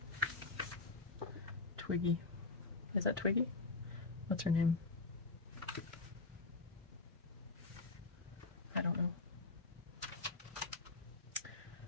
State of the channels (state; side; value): quieter; right; 3.6 dB